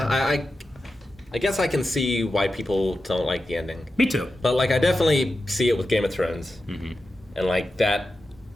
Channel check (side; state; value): both; normal; correlation 0.91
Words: I guess I can see why people don't like the ending. Me too. But like, I definitely see it with Game of Thrones, and like that